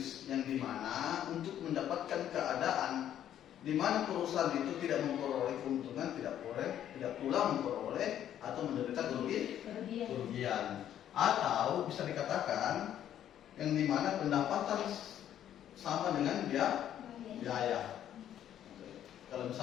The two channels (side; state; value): right; quieter; 10.7 dB